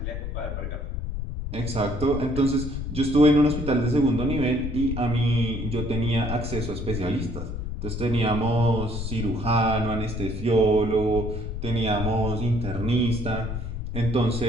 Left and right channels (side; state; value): left; noise; rumble, 5 dB below the sound